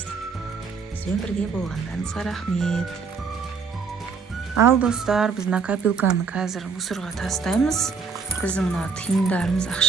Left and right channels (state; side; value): quieter; left; 5.4 dB